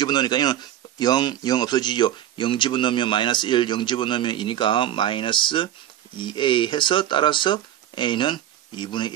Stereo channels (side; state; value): left; quieter; 11.9 dB